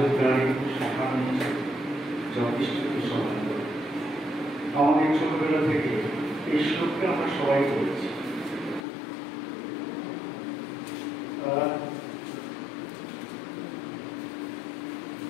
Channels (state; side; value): drops out; right; at 8.8 s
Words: শাখা যথেষ্টকে সমান করে। আমাদের ছোটবেলা থেকে এই শ্লোককে আমরা সবাই করেছি।